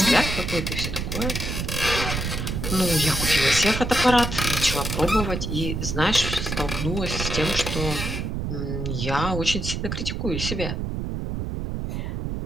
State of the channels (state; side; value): noise; right; rumble, 3 dB below the sound